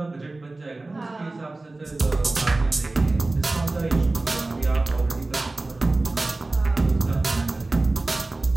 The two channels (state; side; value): quieter; left; 3.1 dB